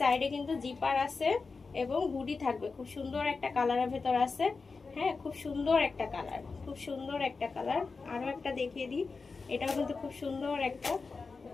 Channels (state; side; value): quieter; right; 4.4 dB